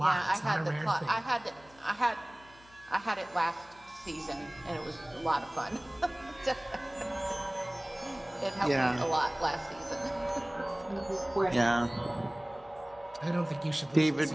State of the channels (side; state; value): left; noise; hum, 26 dB below the sound